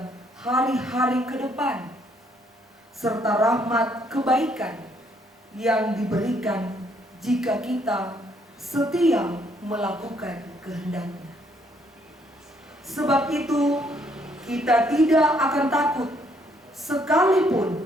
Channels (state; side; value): normal; both; correlation 0.69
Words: hari-hari ke depan, serta rahmat kebaikan yang diberikan jika kita setia melakukan kehendak-Nya. Sebab itu, kita tidak akan takut